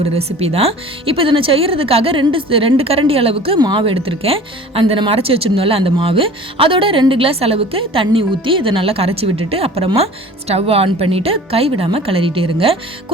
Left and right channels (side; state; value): both; normal; correlation 0.43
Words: ரெசிபி தான். இப்போ இதை நான் செய்கிறதுக்காக 2 கரண்டி அளவுக்கு மாவு எடுத்திருக்கேன். நம்ம அரைச்சி வச்சுருந்தோம்ல அந்த மாவு, அதோட 2 கிளாஸ் அளவுக்கு தண்ணி ஊற்றி இதை நல்லா கரைச்சி விட்டுட்டு அப்புறமா ஸ்டவ் ஆன் பண்ணிவிட்டு கைவிடாமல் கிளறிட்டே இருங்க.